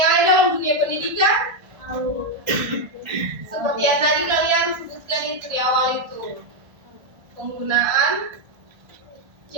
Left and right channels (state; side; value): late; left; 1.4 ms